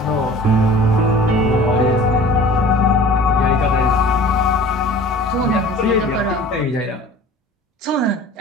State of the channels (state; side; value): normal; both; correlation 0.44